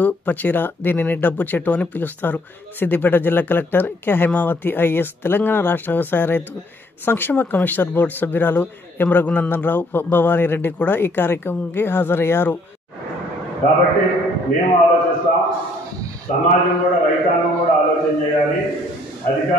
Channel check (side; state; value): both; normal; correlation 0.64